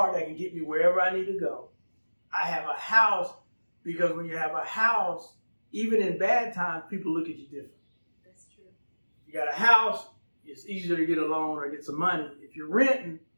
that can get me wherever I need to go. I have a house because when you have a house, even in bad times, people look at you different. That's true. You got a house, it's easier to get a loan or get some money. If you're renting,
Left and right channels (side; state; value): both; inverted; correlation -1.00